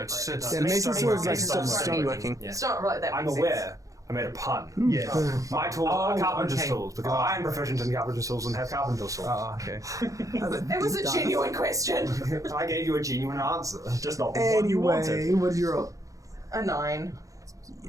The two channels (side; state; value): left; late; 0.16 ms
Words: No, separate. it's Yeah, Mason's tools is like Stoneworking. stoneworking. Yeah. It's not really that I'm makes aware I made a pun. Yeah. My tools are carpenter's okay. tools because I am proficient in carpenter's tools and have carpenter's tools. Oh, okay. It was a genuine question. I gave you a genuine answer. Just not the one you wanted. Anyway, what's your roll? A 9.